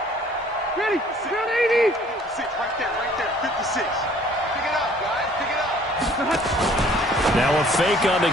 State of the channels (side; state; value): both; normal; correlation 0.56